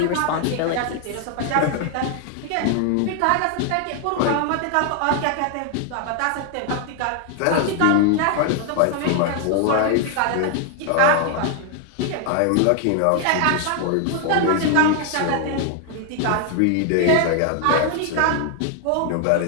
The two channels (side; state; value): both; different; correlation 0.00